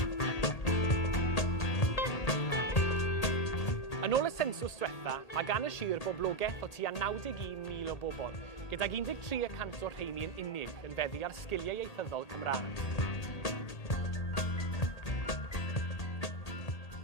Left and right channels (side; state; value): right; late; 1.8 ms